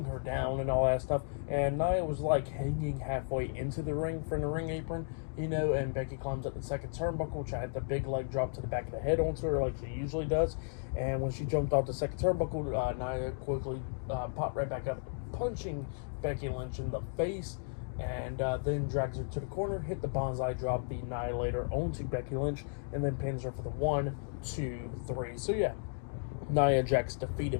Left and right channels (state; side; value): silent; right; digital silence